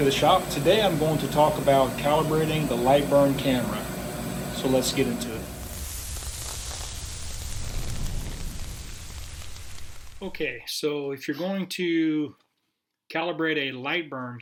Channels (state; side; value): identical; both; correlation 1.00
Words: the shop. Today I'm going to talk about calibrating the Lightburn camera. So let's get into it. Okay, so if you're going to calibrate a